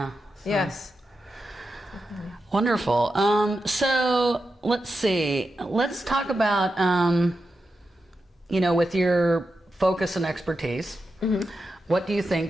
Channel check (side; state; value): both; normal; correlation 0.89